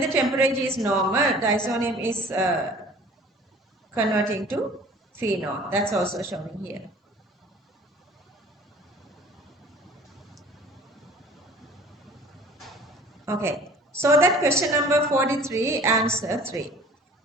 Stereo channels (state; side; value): normal; both; correlation 0.48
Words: temperature is normal, diazonium is converting to phenol. That's also showing here. Okay, so that question number 43, answer 3.